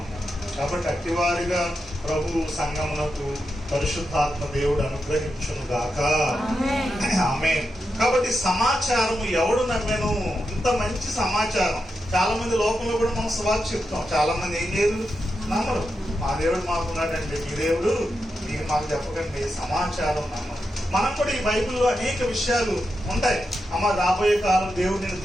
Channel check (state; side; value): normal; both; correlation 0.87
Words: కాబట్టి అట్టివారిగా ప్రభు సంగమునకు పరిశుద్ధాత్మ దేవుడు అనుగ్రహించును గాక. ఆమేన్. కాబట్టి సమాచారం ఎవడు నమ్మెను? ఇంత మంచి సమాచారం. చాలా మంది లోకంలో కూడా మనం సువార్త చెప్తాం, చాలా మంది ఏం చేయరు, నమ్మరు. మా దేవుడు మాకున్నాడండి, మీ దేవుడు మీరు మాకు చెప్పకండి. సమాచారం నమ్మరు. మనం కూడా ఈ బైబిల్లో అనేక విషయాలు ఉంటాయి. అమ్మ రాబోయే కాలం దేవుడు నిన్ను